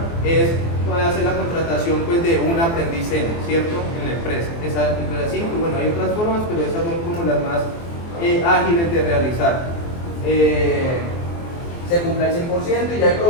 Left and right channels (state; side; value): late; right; 24 ms